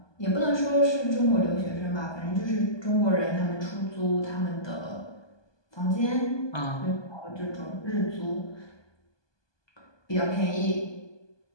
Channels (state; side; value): late; right; 1.2 ms